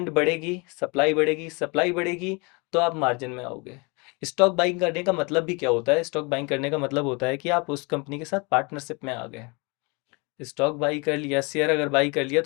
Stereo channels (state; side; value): quieter; right; 29.4 dB